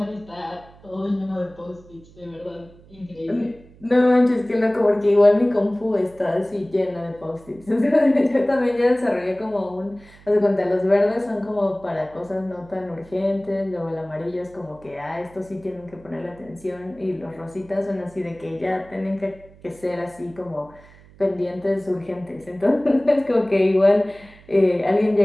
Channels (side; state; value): right; noise; hum, 24 dB below the sound